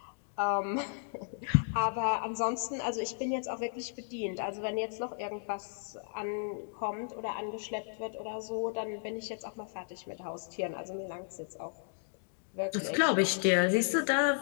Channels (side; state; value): right; silent; digital silence